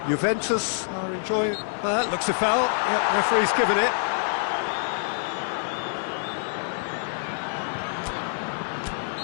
Juventus are enjoying... looks a foul. Yep, referee's given it.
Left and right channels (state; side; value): silent; right; digital silence